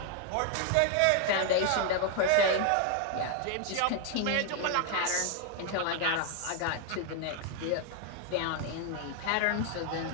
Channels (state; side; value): different; both; correlation 0.01